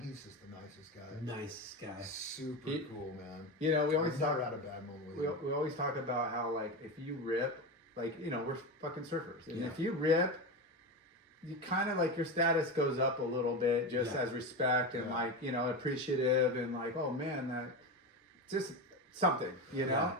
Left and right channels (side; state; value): both; normal; correlation 0.19